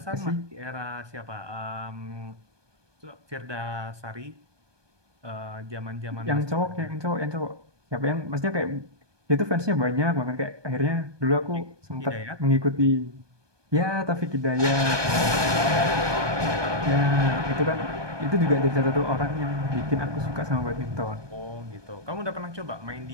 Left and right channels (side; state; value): left; late; 1.2 ms